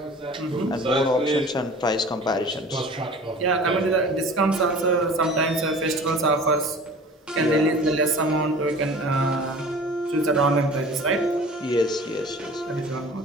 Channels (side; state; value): both; normal; correlation 0.43